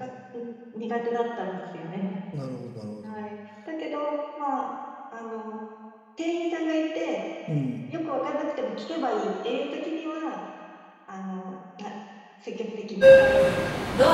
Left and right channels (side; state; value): both; identical; correlation 1.00